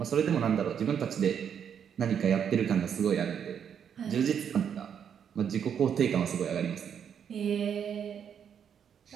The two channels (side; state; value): left; quieter; 8.1 dB